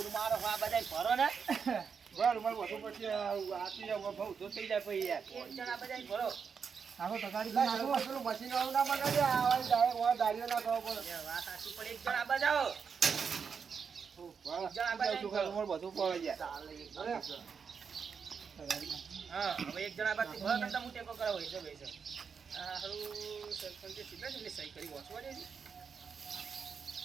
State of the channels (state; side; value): quieter; left; 6.2 dB